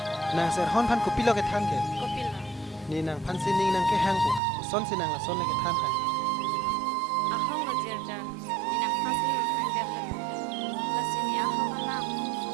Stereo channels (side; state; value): left; drops out; at 4.4 s